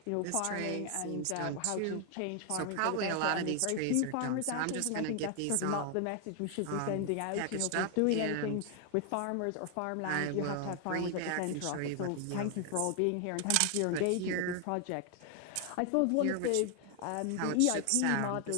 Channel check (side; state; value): both; different; correlation 0.00